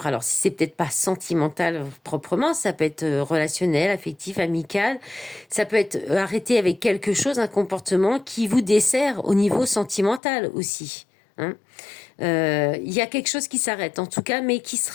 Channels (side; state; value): right; drops out; at 10.2 s